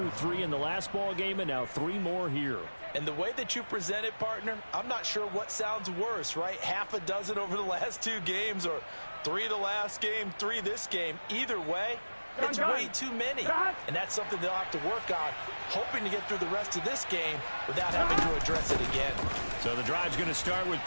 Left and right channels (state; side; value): inverted; both; correlation -1.00